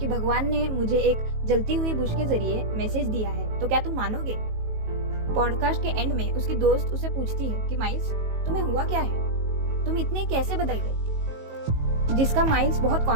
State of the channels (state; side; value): late; left; 19 ms